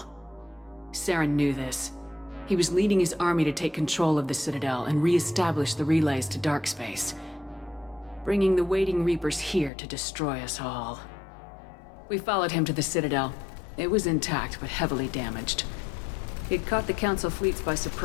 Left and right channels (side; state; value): right; drops out; at 9.7 s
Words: Saren knew this. He was leading his army to take control of the Citadel and re-establish the relays to dark space, bringing the waiting Reapers here to destroy us all. We followed him to the Citadel. It was intact, but heavily damaged. He'd caught the Council fleets by